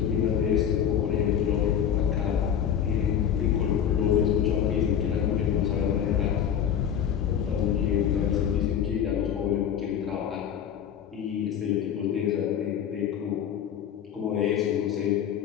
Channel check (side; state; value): right; quieter; 9.0 dB